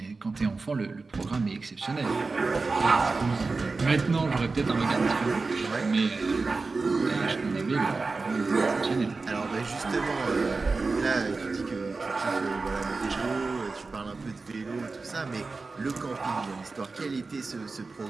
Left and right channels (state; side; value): quieter; left; 3.9 dB